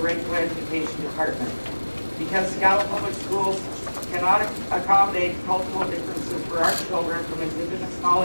regular education department. Because Seattle Public Schools cannot accommodate cultural differences for our children from Indigenous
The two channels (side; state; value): both; inverted; correlation -1.00